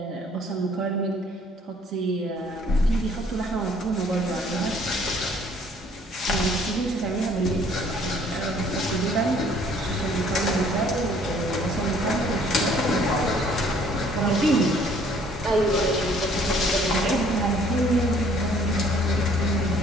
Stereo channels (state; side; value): normal; both; correlation 0.59